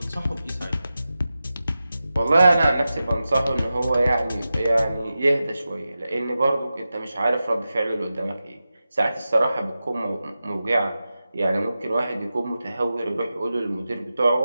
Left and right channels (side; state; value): both; inverted; correlation -0.93